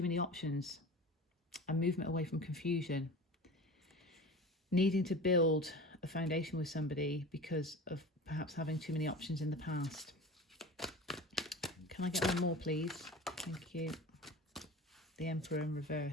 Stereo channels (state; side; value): normal; both; correlation 0.35